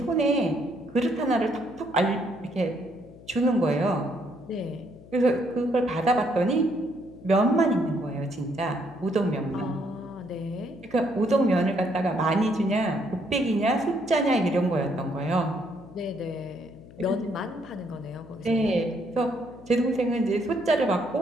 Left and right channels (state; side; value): noise; left; hum, 20 dB below the sound